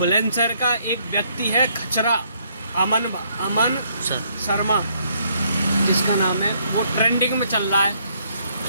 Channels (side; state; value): both; inverted; correlation -0.69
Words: का एक व्यक्ति है खचरा, अमन शर्मा जिसका नाम है, वो ट्रेंडिंग में चल रहा है।